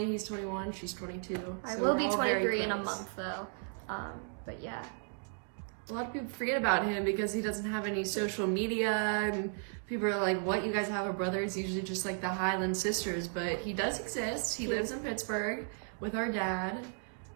he's 21, she's 22. I so will we're be all very 23 in a close. month though. But yeah. A lot of people forget about him because he doesn't have any social media, and people are like, what, you guys have a brother? It's usually just like the Hyland sisters, but he does exist. He lives in Pittsburgh with our dad.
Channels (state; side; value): silent; left; 55 dB below the other